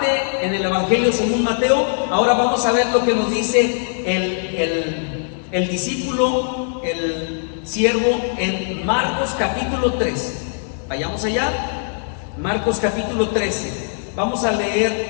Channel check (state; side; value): silent; right; 65 dB below the other